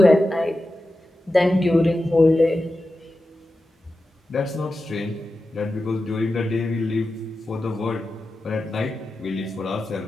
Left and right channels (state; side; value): normal; both; correlation 0.92